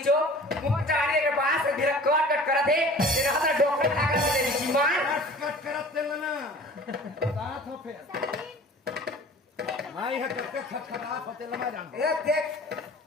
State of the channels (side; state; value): both; normal; correlation 0.44